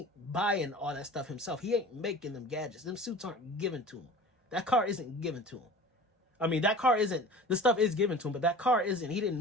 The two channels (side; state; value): both; normal; correlation 0.39